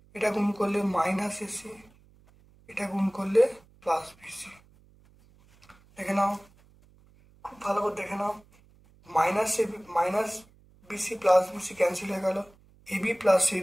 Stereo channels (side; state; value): right; noise; hum, 29 dB below the sound